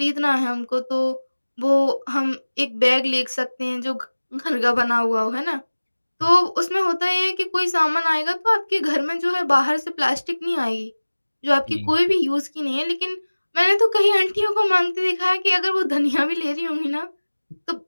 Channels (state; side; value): inverted; both; correlation -1.00